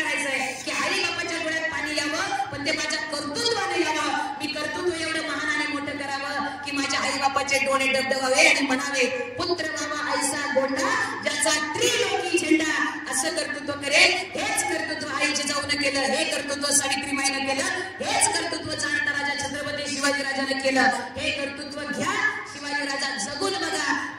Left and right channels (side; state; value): both; identical; correlation 1.00